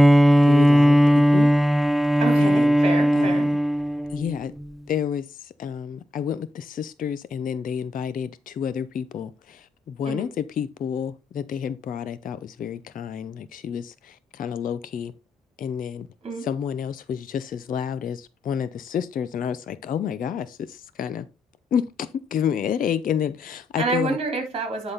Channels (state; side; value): normal; both; correlation 0.87